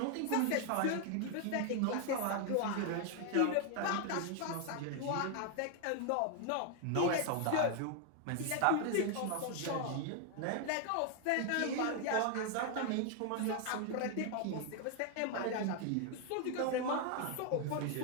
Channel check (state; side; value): different; both; correlation 0.00